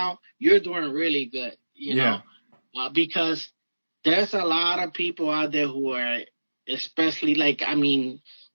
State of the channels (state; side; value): inverted; both; correlation -1.00